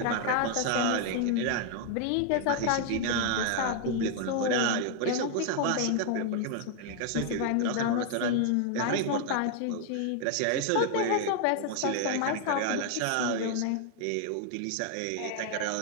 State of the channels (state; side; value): different; both; correlation 0.00